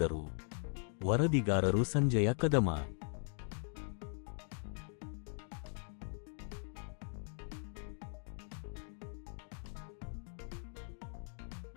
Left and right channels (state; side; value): silent; right; 51 dB below the other